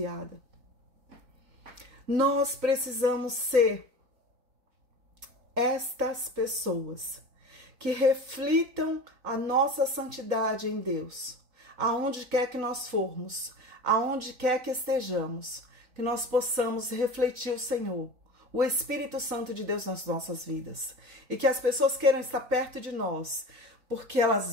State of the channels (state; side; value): late; left; 4.0 ms